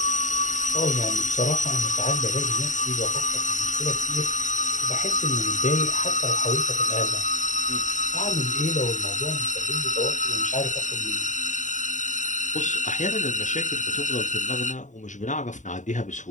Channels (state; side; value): late; right; 0.36 ms